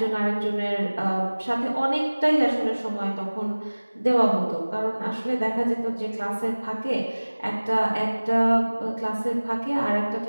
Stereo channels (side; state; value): both; inverted; correlation -1.00